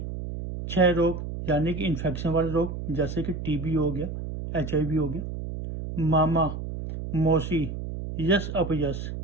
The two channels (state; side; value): noise; right; hum, 7 dB below the sound